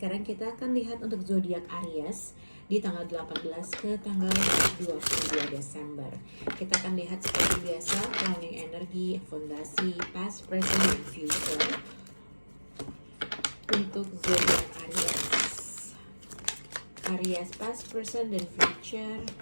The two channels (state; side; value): inverted; both; correlation -1.00